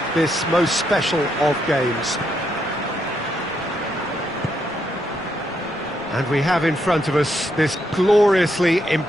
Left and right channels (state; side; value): noise; left; rumble, 26 dB below the sound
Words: this most special of games. And we have in front of us this gloriously